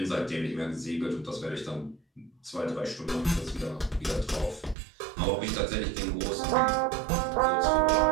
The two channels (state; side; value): drops out; left; at 4.8 s